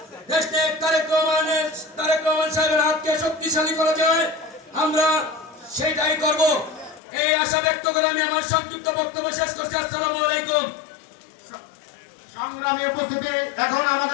দেশনেতা তারেক রহমান সাহেবের হাতকে শক্তিশালী করা যায়, আমরা সেটাই করব। এই আশা ব্যক্ত করে আমি আমার সংক্ষিপ্ত বক্তব্য শেষ করছি। আসসালামু আলাইকুম। সংগ্রামী উপস্থিতি, এখন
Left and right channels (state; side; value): drops out; right; at 7.0 s